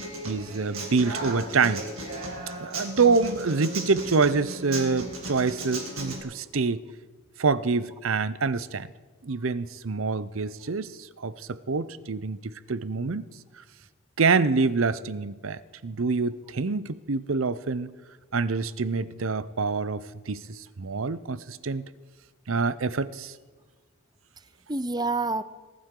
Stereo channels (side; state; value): left; quieter; 3.8 dB